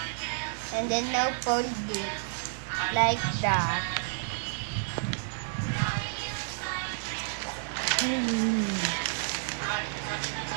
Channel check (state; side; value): silent; left; digital silence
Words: And then now fold it like that.